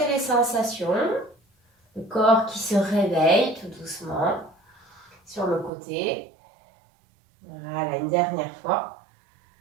les sensations. Le corps qui se réveille tout doucement sur le côté. Voilà, une dernière fois.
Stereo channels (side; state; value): left; drops out; at 5.7 s